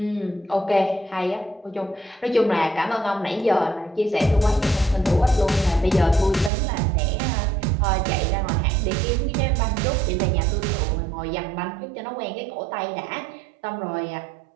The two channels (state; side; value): drops out; left; at 6.5 s